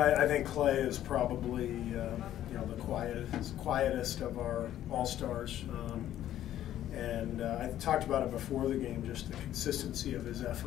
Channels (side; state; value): right; quieter; 12.2 dB